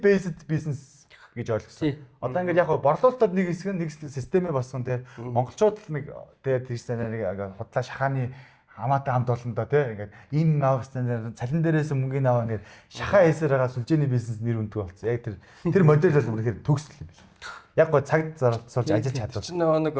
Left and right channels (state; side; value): identical; both; correlation 1.00